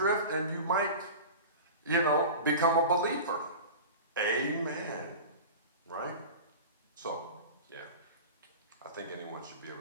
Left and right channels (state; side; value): inverted; both; correlation -0.33